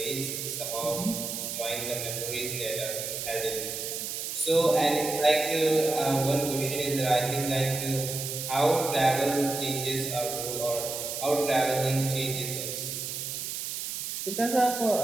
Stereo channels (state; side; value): noise; right; hiss, 5 dB below the sound